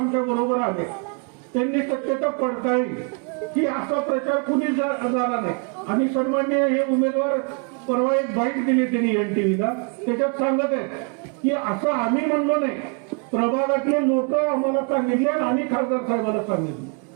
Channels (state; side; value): quieter; left; 35.6 dB